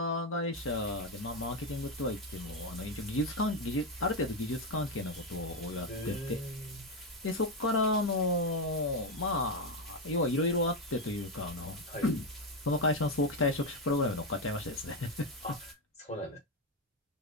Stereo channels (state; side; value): normal; both; correlation 0.09